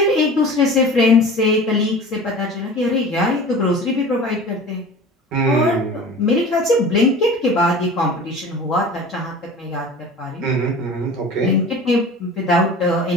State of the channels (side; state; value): both; normal; correlation 0.39